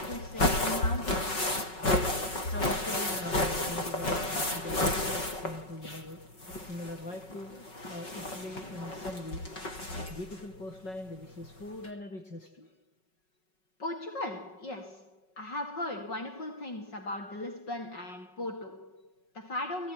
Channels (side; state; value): right; late; 5.4 ms